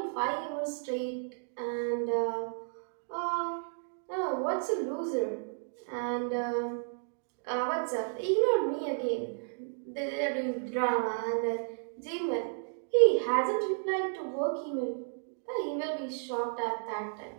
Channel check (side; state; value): left; silent; digital silence